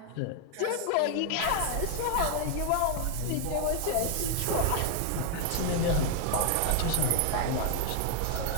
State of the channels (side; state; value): both; different; correlation 0.00